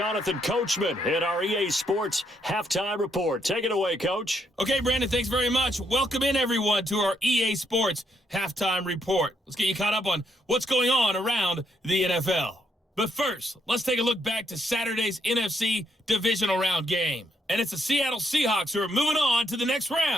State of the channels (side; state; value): both; normal; correlation 0.75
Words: Coachman in our EA Sports Halftime Report. Take it away, Coach. Okay, Brandon, thanks very much. Welcome in, everyone, to our EA Sports Halftime Report. Let's get you caught up on what's going on around the NFL. But first, let's take a look back to Saturday's NFC Divisional Round game. And it's the Seattle Seahawks who are moving on to the next